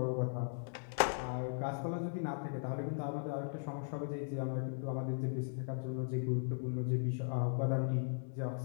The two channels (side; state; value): right; silent; digital silence